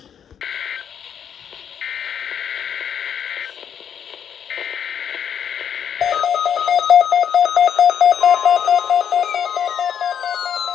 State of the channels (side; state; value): right; quieter; 8.4 dB